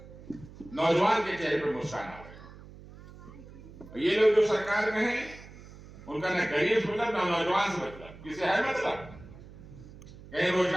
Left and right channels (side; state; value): right; noise; hum, 18 dB below the sound